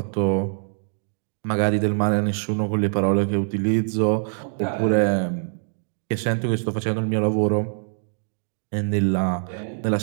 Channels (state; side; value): silent; left; digital silence